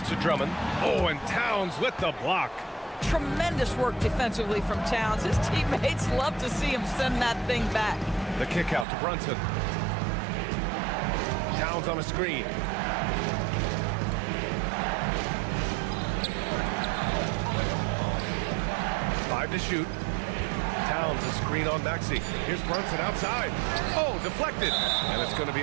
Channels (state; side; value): drops out; left; at 8.8 s